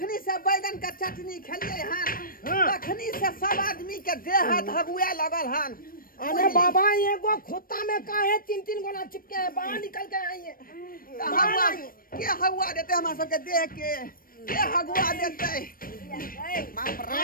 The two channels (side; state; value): right; late; 0.41 ms